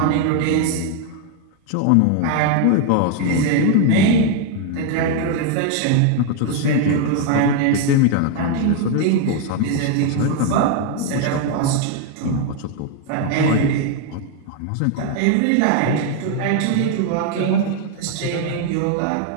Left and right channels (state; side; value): different; both; correlation 0.01